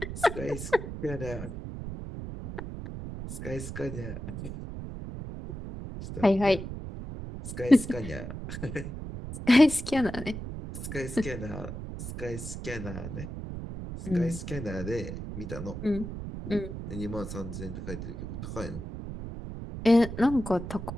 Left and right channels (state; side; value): noise; right; rumble, 8 dB below the sound